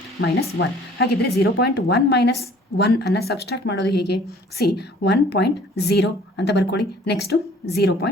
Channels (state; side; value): normal; both; correlation 0.54